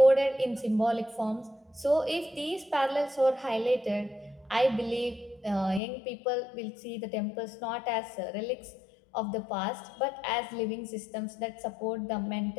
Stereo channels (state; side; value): drops out; right; at 5.8 s